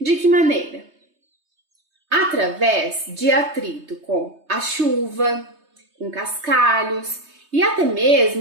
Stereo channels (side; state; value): left; late; 3.2 ms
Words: que maneira? Através de atrito com a chuva, com cascalhos e até